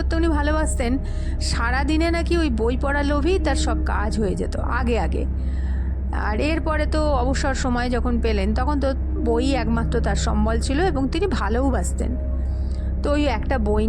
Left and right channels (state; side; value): identical; both; correlation 1.00